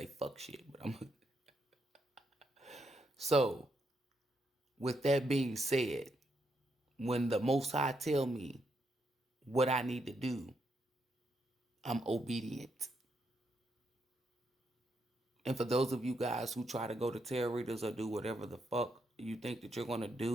fuck shit, but I'm... So with that being said, when the Most High tell me what I need to do, I'm obedient. And for those of you guys who try to go to tarot readers or do whatever the fuck you think that you're going to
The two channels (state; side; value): normal; both; correlation 0.79